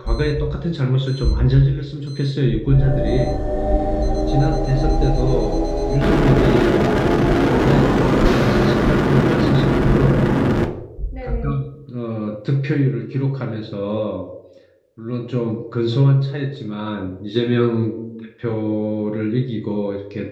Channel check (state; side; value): identical; both; correlation 1.00